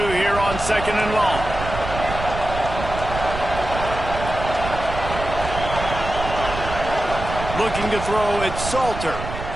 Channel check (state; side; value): noise; right; rumble, 7 dB below the sound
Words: here on 2nd and long. Looking to throw, it's Salter.